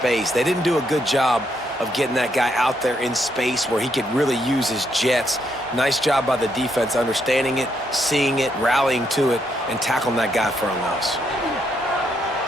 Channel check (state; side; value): normal; both; correlation 0.76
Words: They didn't do a good job of getting that guy out there in space where he could really use his jets. Nice job by the defense understanding it, seeing it, rallying to it, and tackling that guy for a loss.